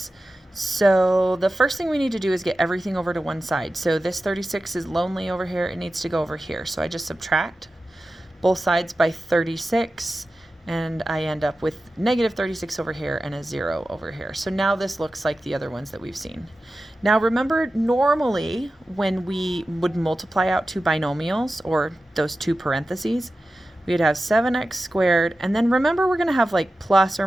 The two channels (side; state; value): both; normal; correlation 0.94